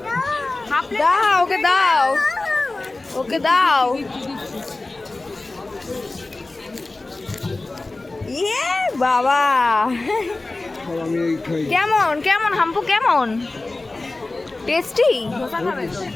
দাও ওকে, দাও ওকে, দাও। ইয়ে বাবা, কেমন কেমন হাম্পু, কেমন টেস্টি?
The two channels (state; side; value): quieter; right; 3.1 dB